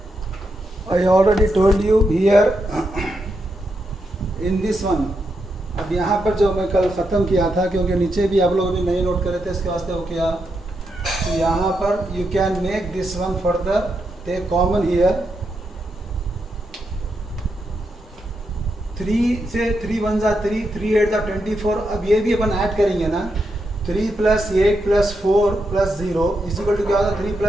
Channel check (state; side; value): normal; both; correlation 0.83